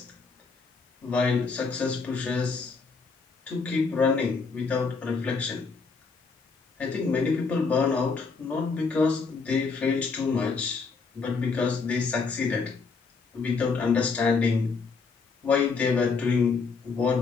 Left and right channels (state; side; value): quieter; right; 4.7 dB